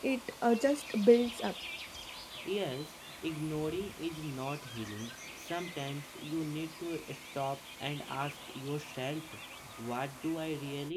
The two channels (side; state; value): both; identical; correlation 1.00